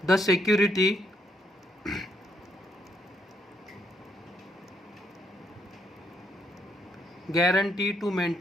the security guarantee to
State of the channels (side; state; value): both; normal; correlation 0.74